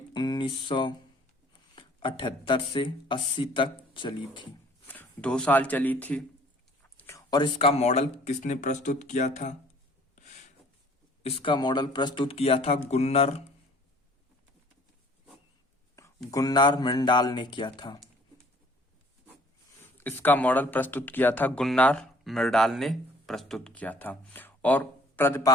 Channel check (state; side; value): normal; both; correlation 0.55